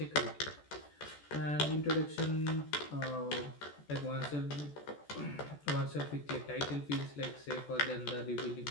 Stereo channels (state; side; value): late; right; 14 ms